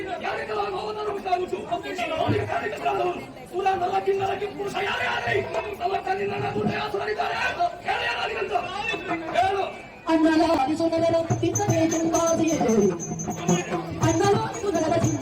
ಯಾರಿಗೆಲ್ಲ ನೋವನ್ನು ಉಂಟಾಗುತ್ತು ಕೂಡ ನಲಕ್ಕಿಂದಲಕ್ಕೆ ಪುರುಷ ಯಾರೇ ಆಗಲಿ ನಮ್ಮ ಕಣ್ಣಿನ ದುಡ್ಡಾಸುರಿದ್ದಾರೆ ಹೇಳು. ಅಣ್ಣಲಾರಿಸುನಗರ ತಿನ್ನಬೇಕೆಂಬಾದಿಯೇ, ಅಣ್ಣಲಾರಿಸುನಗರ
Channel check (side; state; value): both; identical; correlation 1.00